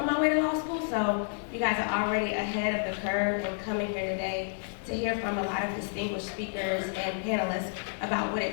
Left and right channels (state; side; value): silent; right; digital silence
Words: my way to law school, so you guys are already ahead of the curve in coming here today to hear from a lot of distinguished speakers and panelists about what